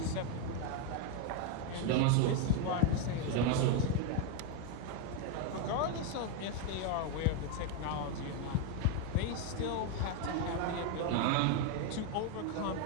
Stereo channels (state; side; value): different; both; correlation 0.01